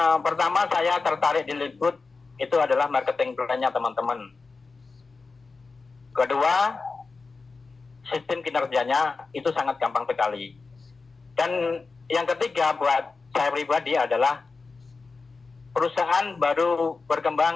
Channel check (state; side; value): quieter; right; 4.2 dB